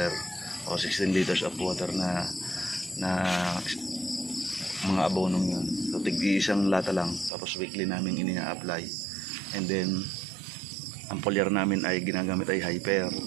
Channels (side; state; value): left; drops out; at 7.3 s